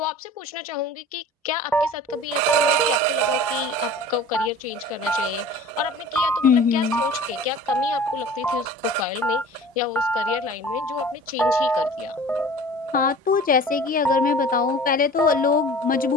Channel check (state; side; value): normal; both; correlation 0.42